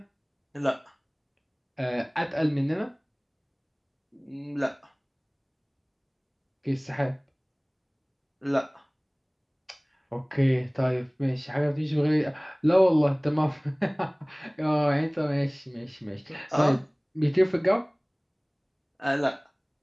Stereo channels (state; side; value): identical; both; correlation 1.00